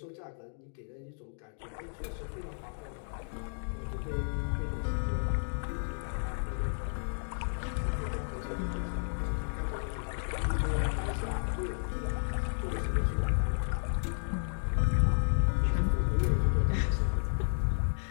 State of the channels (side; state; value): right; silent; digital silence